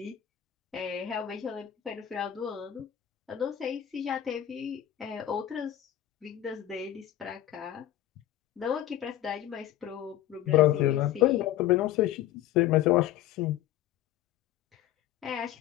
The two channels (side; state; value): right; quieter; 12.5 dB